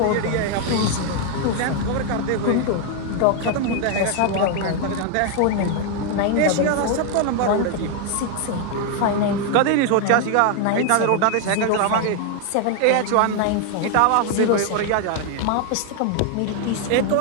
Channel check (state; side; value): different; both; correlation 0.00